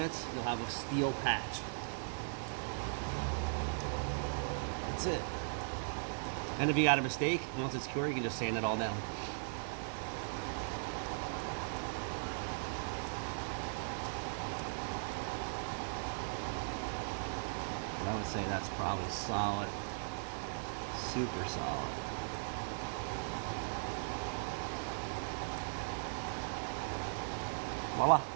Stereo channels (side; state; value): left; silent; digital silence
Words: you'll have a steel patch. That's it. And if you got a mistake, once it's cured, you can just sand it all down. But I would say that's probably solid. Super solid. Voila.